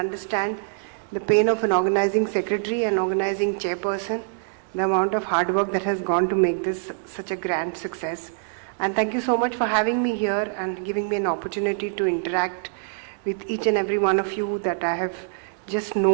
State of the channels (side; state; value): left; silent; digital silence